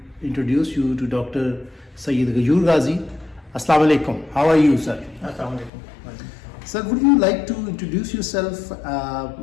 introduce you to Dr. Sayyid Ghayur Ghazi. Assalamu alaikum. How are you, sir? Assalamu alaikum. Sir, would you like to introduce yourself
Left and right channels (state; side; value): drops out; right; at 5.7 s